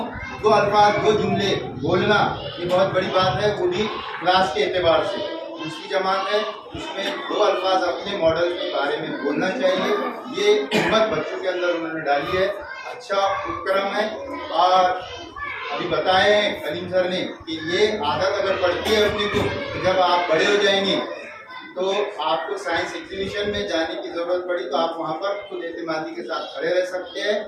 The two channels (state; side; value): identical; both; correlation 1.00